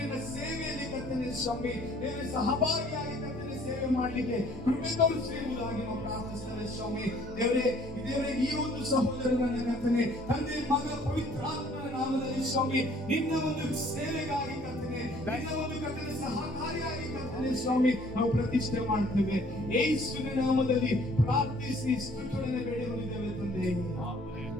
ಸೇವೆಯಲ್ಲಿ ಕರ್ತನೆ ಸ್ವಾಮಿ ದೇವರ ಸಹಭಾಗಿಯಾಗಿ ಕರ್ತನೆ ಸೇವೆ ಮಾಡಲಿಕ್ಕೆ ಕೃಪೆ ತೋರಿಸಿರುವುದಾಗಿ ನಾವು ಪ್ರಾರ್ಥಿಸ್ತೇವೆ ಸ್ವಾಮಿ. ದೇವರೇ ಈ ಒಂದು ಸಹೋದರನ ಕರ್ತನೆ ತಂದೆ ಮಗ ಪವಿತ್ರಾತ್ಮನ ನಾಮದಲ್ಲಿ ಸ್ವಾಮಿ ನಿನ್ನ ಒಂದು ಸೇವೆಗಾಗಿ ಕರ್ತನೆ, ನಿನ್ನ ಒಂದು ಕರ್ತನೆ ಸಹಕಾರಿಯಾಗಿ ಕರ್ತನೆ ಸ್ವಾಮಿ ನಾವು ಪ್ರತಿಷ್ಠೆ ಮಾಡ್ತೇವೆ. ಯೇಸುವಿನ ನಾಮದಲ್ಲಿ ಪ್ರಾರ್ಥಿಸಿ ಸ್ತುತಿಗಳನ್ನು ಬೇಡಿಕೊಂಡಿದ್ದೇವೆ ತಂದೆ.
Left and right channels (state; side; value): normal; both; correlation 0.57